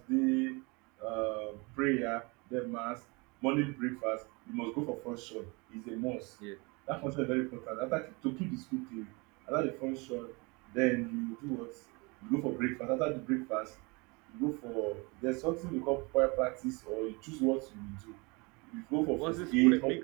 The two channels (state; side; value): quieter; left; 27.9 dB